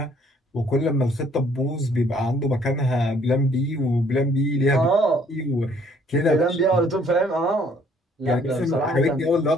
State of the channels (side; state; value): both; normal; correlation 0.62